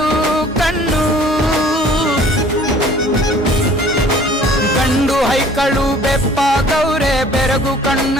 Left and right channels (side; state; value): both; normal; correlation 0.52